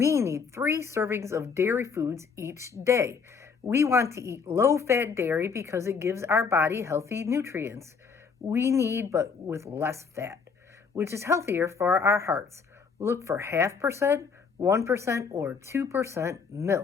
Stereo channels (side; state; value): right; quieter; 5.5 dB